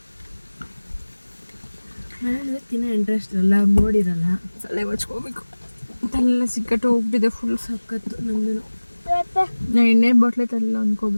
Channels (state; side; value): inverted; both; correlation -1.00